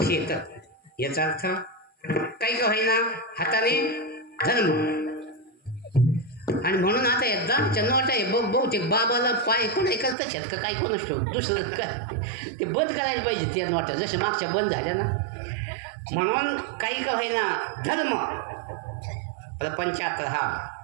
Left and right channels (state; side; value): drops out; left; at 10.2 s